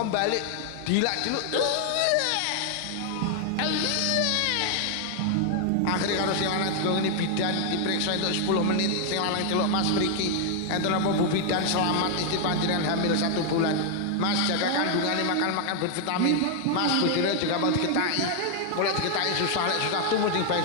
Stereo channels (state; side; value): different; both; correlation 0.00